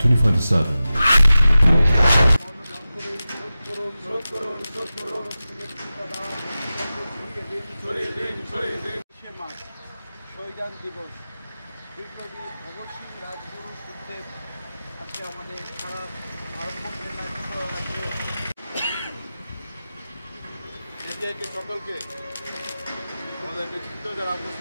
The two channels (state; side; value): inverted; both; correlation -0.95